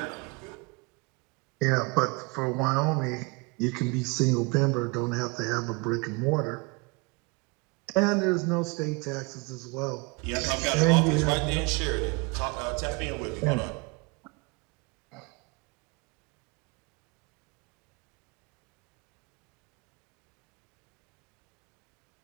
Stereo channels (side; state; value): left; quieter; 28.9 dB